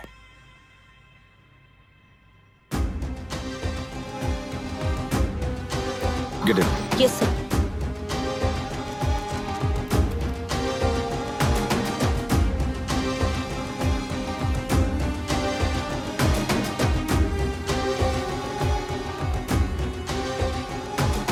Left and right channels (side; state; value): both; identical; correlation 1.00